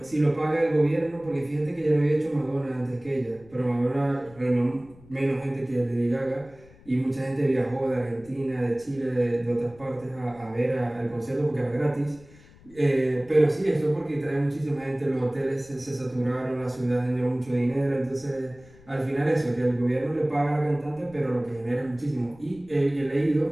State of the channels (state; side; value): noise; left; rumble, 24 dB below the sound